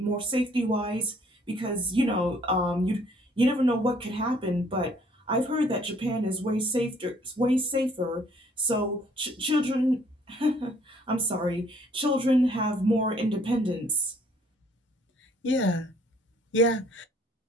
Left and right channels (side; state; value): both; normal; correlation 0.60